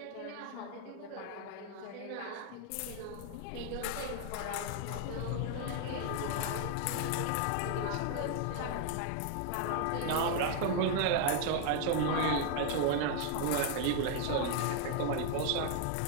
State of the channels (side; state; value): both; different; correlation 0.00